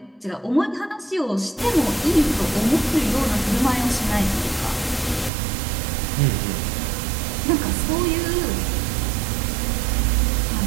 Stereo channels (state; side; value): drops out; left; at 5.3 s